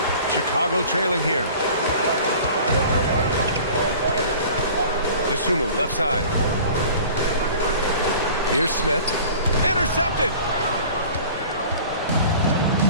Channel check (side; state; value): both; inverted; correlation -0.44